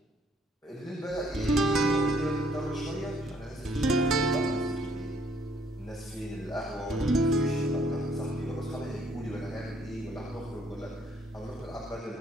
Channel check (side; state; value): both; normal; correlation 0.65